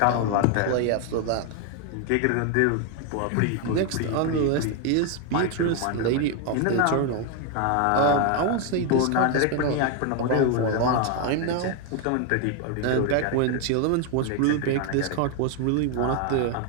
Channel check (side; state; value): both; different; correlation 0.01